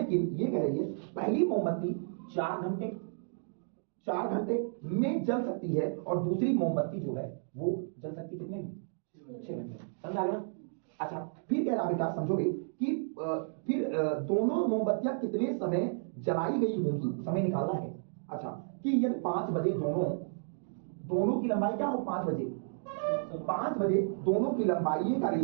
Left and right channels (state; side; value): silent; left; digital silence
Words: ये कह रही है पहली मोमबत्ती 4 घंटे में जल सकती है, और दूसरी मोमबत्ती जो है वो जल सकती कितने में? 6 घंटे। समझ आ गया? अच्छा फिर कह रहा बेटा समझोगे कि फिर दोनों मोमबत्तियां कितने समय जलाई गई होंगी, समय निकालना है। अच्छा कि यदि 5 बजे दोनों की लंबाई क्या हो? 5 बजे 5 बजे दोनों की लंबाई का